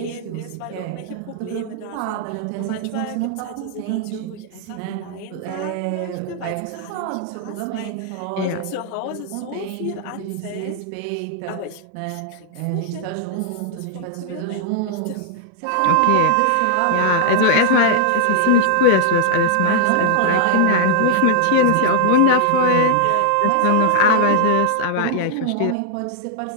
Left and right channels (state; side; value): different; both; correlation -0.01